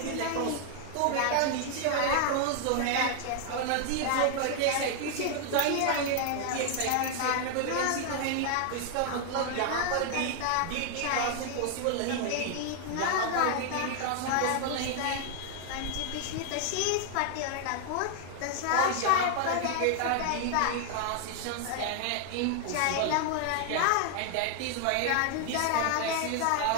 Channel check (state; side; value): different; both; correlation 0.00